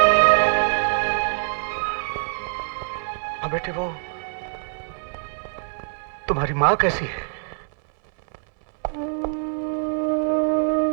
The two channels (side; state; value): left; silent; 63 dB below the other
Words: हाँ बेटे, वो तुम्हारी मां कैसी है?